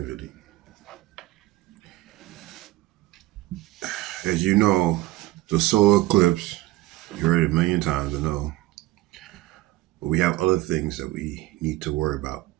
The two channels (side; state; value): left; quieter; 17.2 dB